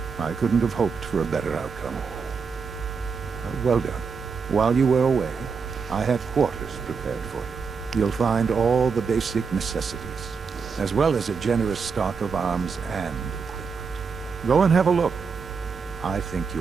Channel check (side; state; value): left; quieter; 5.5 dB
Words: I couldn't have hoped for a better outcome. Well done. While you were away, I had quarters prepared for you. You'll find all the basic necessities, as well as a generous stock of arms and equipment. Go and have a look. I think